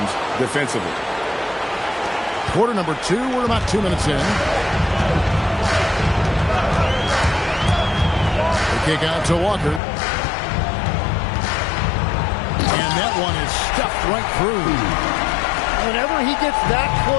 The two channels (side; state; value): right; drops out; at 9.8 s